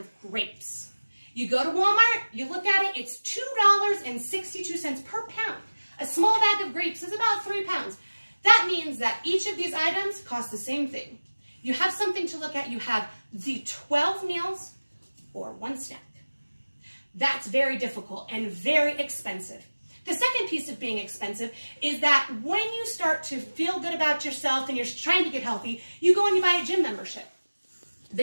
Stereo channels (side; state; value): both; inverted; correlation -1.00